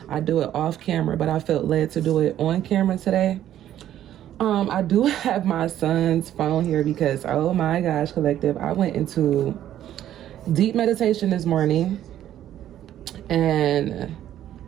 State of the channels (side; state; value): left; quieter; 11.7 dB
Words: I do it off camera, but I felt led to do it on camera today. I do have my son's phone here because, oh my gosh, collective, I went into deep meditation this morning, and